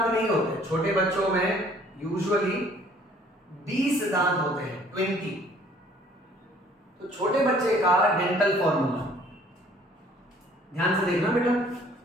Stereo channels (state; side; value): normal; both; correlation 0.57